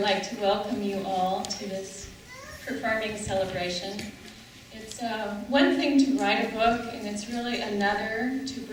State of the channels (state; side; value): identical; both; correlation 1.00